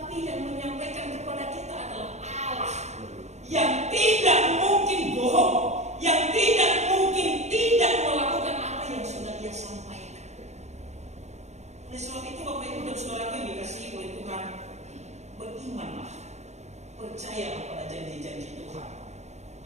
yang menyampaikan kepada kita adalah Allah yang tidak mungkin bohong, yang tidak mungkin tidak melakukan apa yang sudah dia sampaikan. Oleh sebab itu Bapak Ibu dan Saudara yang dikasihi oleh Tuhan, berimanlah, percayalah pada janji-janji Tuhan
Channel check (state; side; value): late; left; 0.33 ms